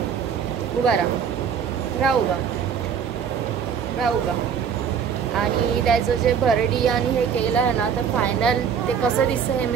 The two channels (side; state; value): left; quieter; 7.3 dB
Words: उभा राहा उभा. आणि त्याचं जे भरडी आणि हे केलं आहे ना, तर फायनल ते कसं दिसतं हे